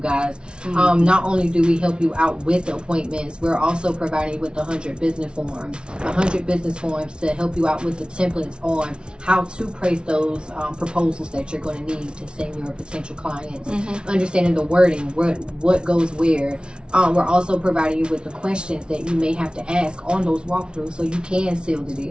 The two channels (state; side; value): late; left; 0.056 ms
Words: Not only do we help you out with the appointments, we're also providing you with 100 business forms. 100 business forms to help you out with the templates on how to place those proposals that you're going to need to send your potential clients. Understanding the wording, what goes where. We're also providing you with the questions that you may have to ask on those walkthroughs so you can seal the